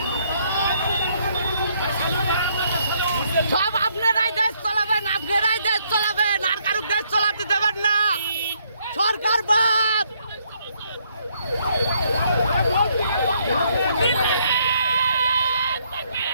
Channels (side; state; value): both; inverted; correlation -0.71